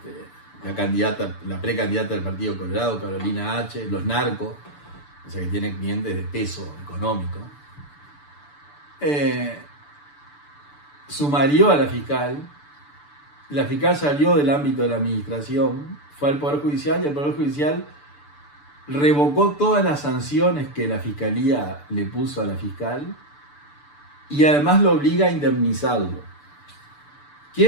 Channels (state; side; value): late; right; 6.9 ms